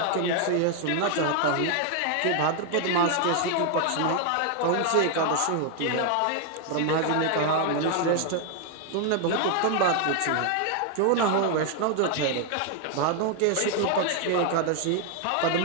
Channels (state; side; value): different; both; correlation 0.00